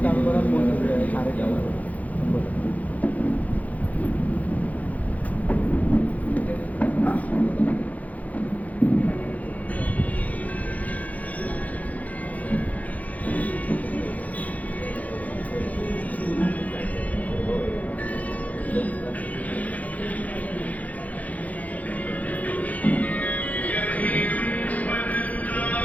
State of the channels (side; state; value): right; late; 0.074 ms